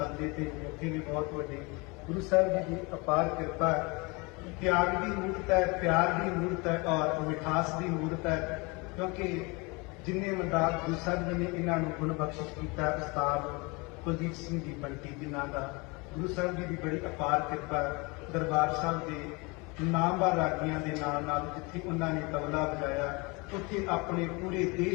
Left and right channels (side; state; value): right; quieter; 27.5 dB